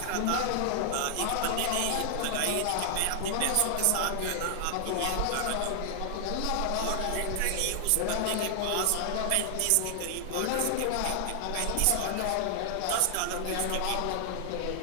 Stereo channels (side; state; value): both; different; correlation 0.00